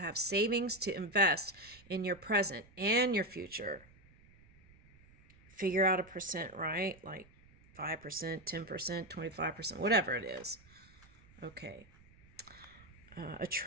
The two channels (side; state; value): right; noise; rumble, 26 dB below the sound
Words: savings to invest in your present and your future. Figure out a percent, right? Like 5%, 10%, 25%, whatever it is. Okay.